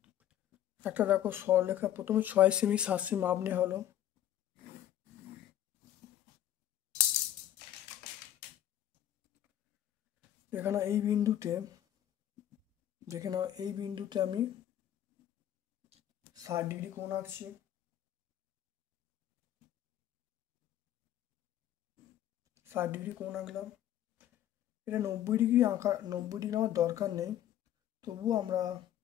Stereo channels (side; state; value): right; quieter; 11.8 dB